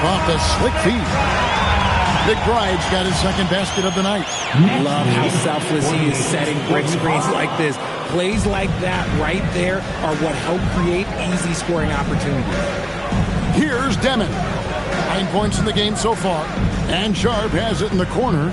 off the slick feed. McBride's got his 2nd basket of the night. Love how selfless he is setting brick screens like this. Plays like that right there are what help create easy scoring opportunities. Here's Demon. 9 points in the game so far. And Sharp has it in the corner.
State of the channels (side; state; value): both; identical; correlation 1.00